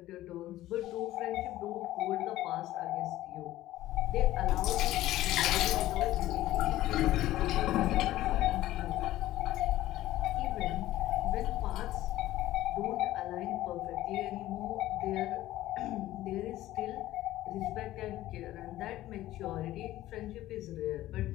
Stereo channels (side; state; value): right; quieter; 15.1 dB